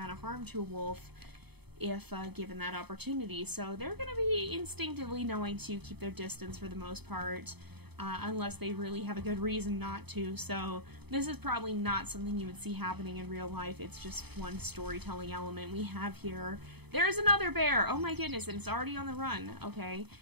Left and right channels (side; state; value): left; late; 0.98 ms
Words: of harm to a wolf if given that opportunity. So they're going to be instinctively knowing to keep their distance for the most part. Unless they really have a good reason not to, so this is probably not something you would see happening in real life. It's just one storytelling element we have here. There's another bear! Oh my goodness, and it's already on the run. Okay,